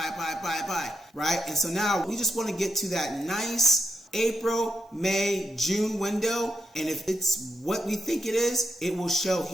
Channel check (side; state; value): both; normal; correlation 0.84